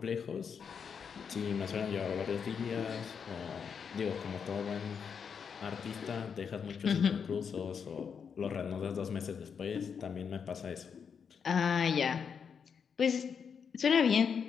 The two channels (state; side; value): quieter; right; 6.7 dB